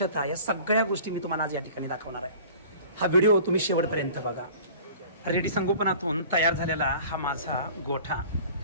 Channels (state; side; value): inverted; both; correlation -0.44